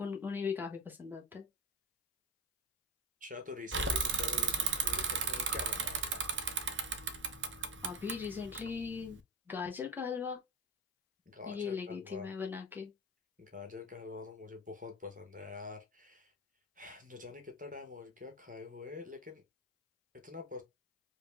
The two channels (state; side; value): normal; both; correlation 0.20